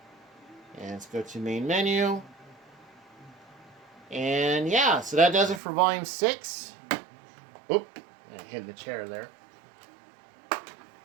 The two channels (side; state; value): left; drops out; at 5.6 s